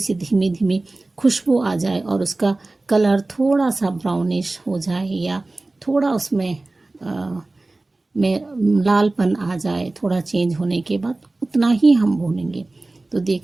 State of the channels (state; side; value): quieter; left; 3.1 dB